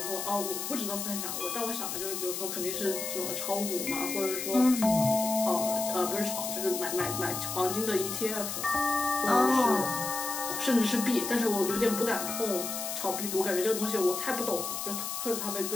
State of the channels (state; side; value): noise; left; hiss, 4 dB below the sound